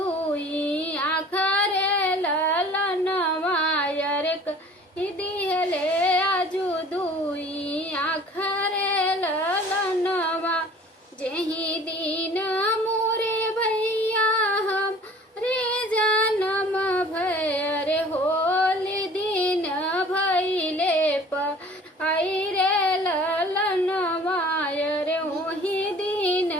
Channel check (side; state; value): both; normal; correlation 0.48